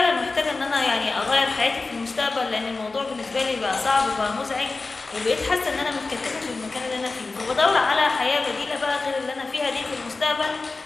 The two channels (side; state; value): right; quieter; 3.7 dB